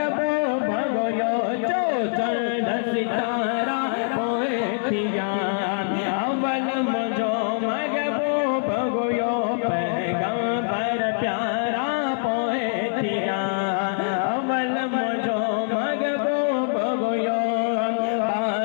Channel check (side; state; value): right; silent; digital silence